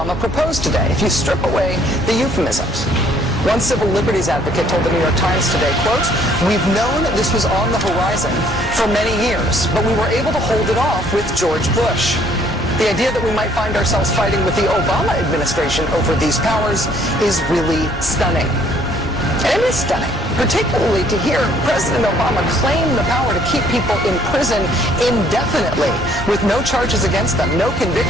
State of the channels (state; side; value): normal; both; correlation 0.62